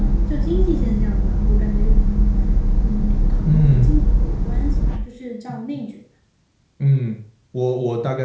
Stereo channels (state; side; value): identical; both; correlation 1.00